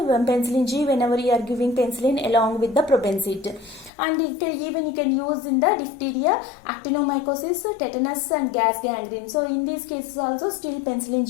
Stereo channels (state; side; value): drops out; right; at 3.9 s